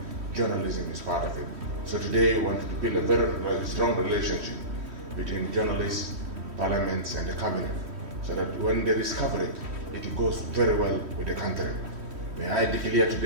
journalism is part of it. So today we want to build a very strong relationship between journalists, parliaments and the cabinet, so that when there is coverage, it goes very well with the country. May I declare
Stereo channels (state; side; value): late; left; 3.1 ms